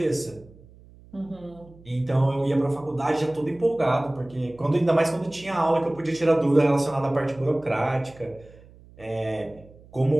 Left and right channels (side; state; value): right; noise; hum, 24 dB below the sound